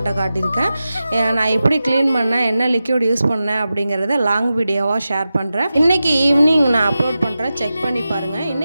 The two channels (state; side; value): inverted; both; correlation -0.93